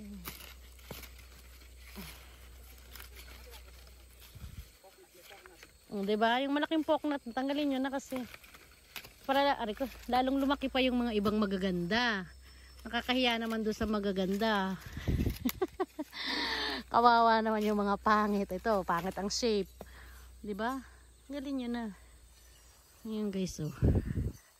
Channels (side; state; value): both; identical; correlation 1.00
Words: Diba? Yung malaking poknat, tanggalin yun na kasi. Para ko, lalong lumaki pa yung mga ibang magaganda. Nakakahiya naman doon sa magaganda. Kawawa naman yung mga pangit. Ito, pangit ang shape. 'Di ba? Galing nyo na. Ngayon guys, oh.